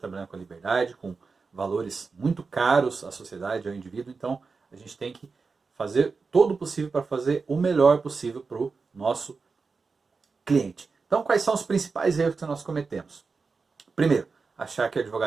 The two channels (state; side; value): quieter; left; 4.6 dB